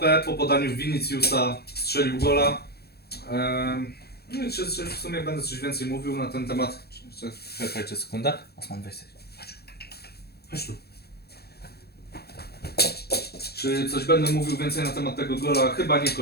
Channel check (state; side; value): late; right; 0.46 ms